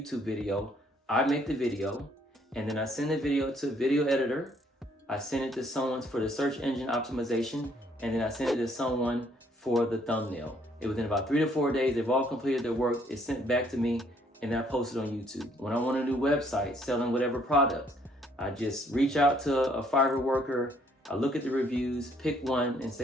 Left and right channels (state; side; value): normal; both; correlation 0.66